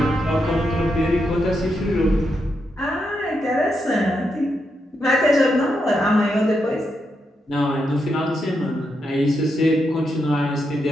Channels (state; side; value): normal; both; correlation 0.83